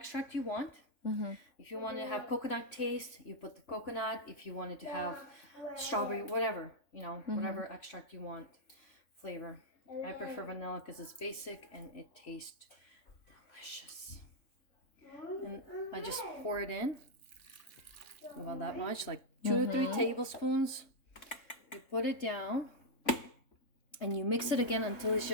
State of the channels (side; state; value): right; late; 3.6 ms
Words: you want. If you want to have coconut taste, you put the coconut. If you wanted to have strawberry, whatever, you know, whatever extract you want, flavor. I prefer vanilla because it's basic and it tastes delicious. And I just pour it in. About that much, like 2 to 3 tablespoons. You put it down. And you mix it again until it's